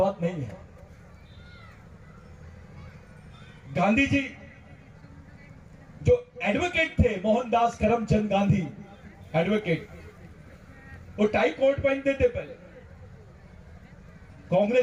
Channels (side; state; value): both; identical; correlation 1.00